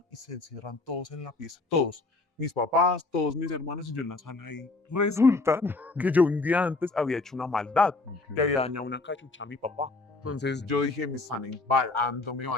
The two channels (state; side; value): quieter; right; 3.4 dB